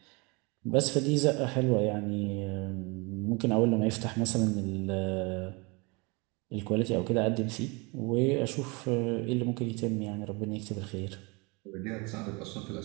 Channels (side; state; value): left; quieter; 28.2 dB